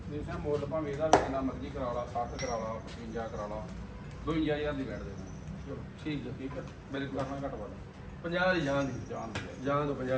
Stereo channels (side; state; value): both; identical; correlation 1.00